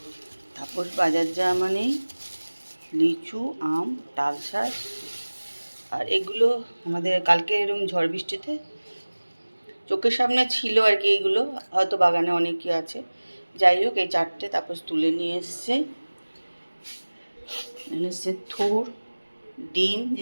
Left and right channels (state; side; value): inverted; both; correlation -1.00